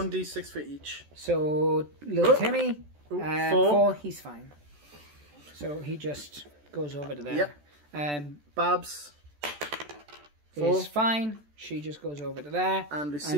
for each. So, Little Oh. Timmy, Four. 4, he's fine. So he just goes over to there. Yep. Babs. 4. Is fine. She just goes over to there. And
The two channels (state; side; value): late; left; 14 ms